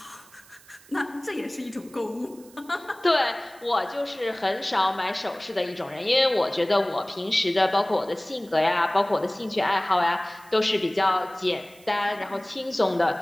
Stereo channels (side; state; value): right; noise; hiss, 25 dB below the sound